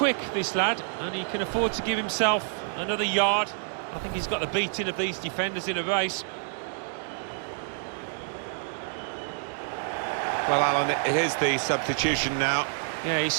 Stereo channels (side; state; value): left; silent; digital silence